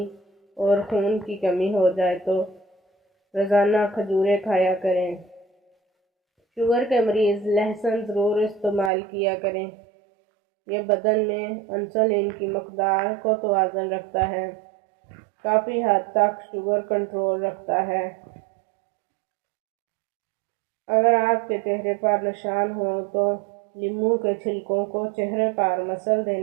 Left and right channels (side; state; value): left; drops out; at 8.9 s